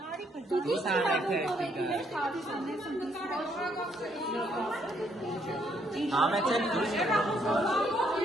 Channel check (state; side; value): normal; both; correlation 0.71